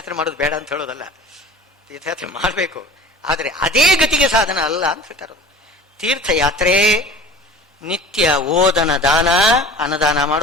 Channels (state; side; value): normal; both; correlation 0.41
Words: ಮಾಡೋದು ಬೇಡ ಅಂತ ಹೇಳೋದಲ್ಲ, ತೀರ್ಥಯಾತ್ರೆ ಮಾಡಬೇಕು. ಆದರೆ ಅದೇ ಗತಿಗೆ ಸಾಧನ ಅಲ್ಲ ಅಂತ ಹೇಳ್ತಾರೆ. ತೀರ್ಥಯಾತ್ರೆ ನಿತ್ಯ ಓದನ ದಾನ, ಅನ್ನದಾನ